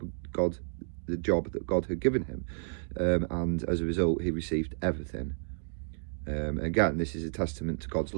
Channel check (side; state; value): left; silent; digital silence